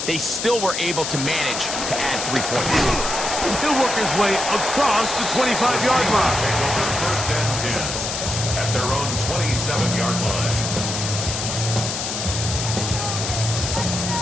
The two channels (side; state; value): left; noise; hiss, 3 dB below the sound